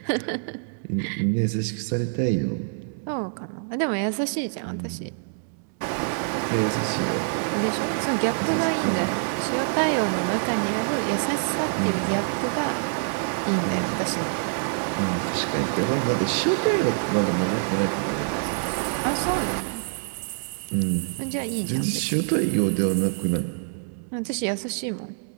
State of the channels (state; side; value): silent; left; digital silence